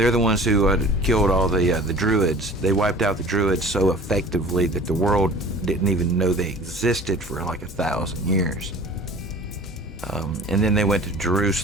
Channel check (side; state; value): both; normal; correlation 0.44